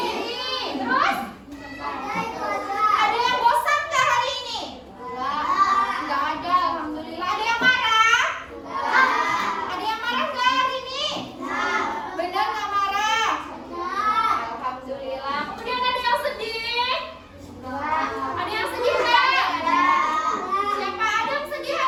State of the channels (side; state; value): both; identical; correlation 1.00